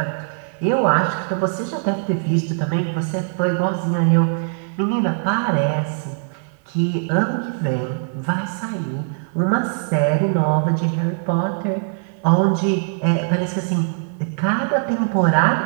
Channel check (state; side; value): silent; left; 57 dB below the other